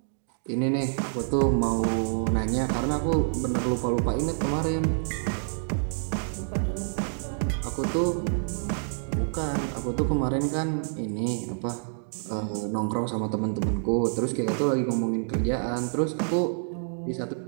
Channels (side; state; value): left; silent; digital silence